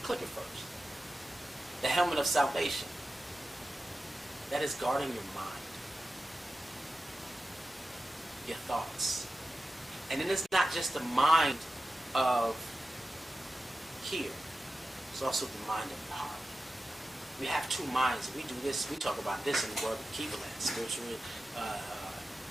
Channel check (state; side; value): normal; both; correlation 0.93